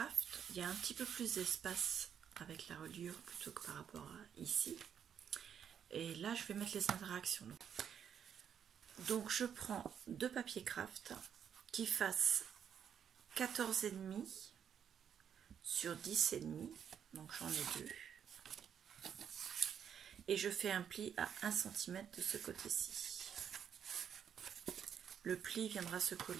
il y a un petit peu plus d'espace avec la reliure plutôt que par rapport à ici. Et là, je vais mettre les interactions. Donc, je prends deux papiers craft qui fassent 14,5 sur 10,5. Donc, j'en ai deux. Et je fais un pli à 1 cm de ce côté-ci. Le pli viendra se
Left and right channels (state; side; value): quieter; left; 8.4 dB